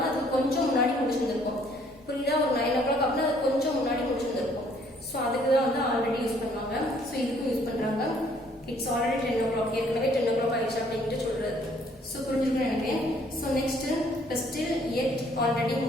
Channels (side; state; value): both; normal; correlation 0.62